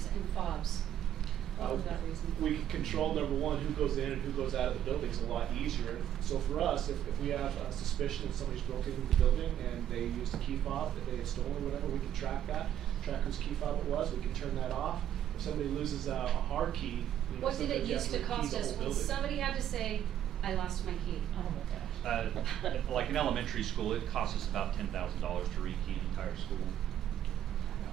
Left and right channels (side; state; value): left; quieter; 10.8 dB